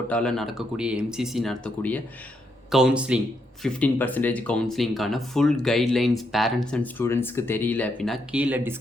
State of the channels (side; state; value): both; normal; correlation 0.78